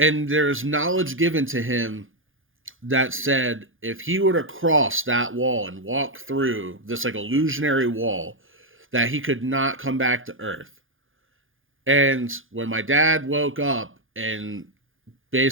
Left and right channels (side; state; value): left; late; 0.58 ms